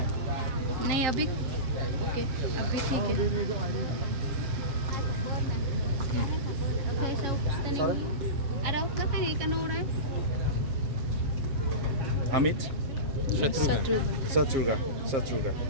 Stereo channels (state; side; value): late; left; 7.3 ms